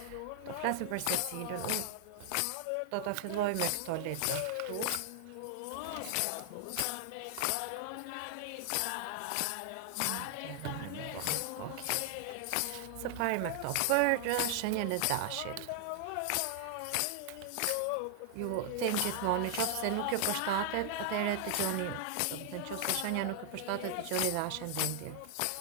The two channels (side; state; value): both; different; correlation 0.00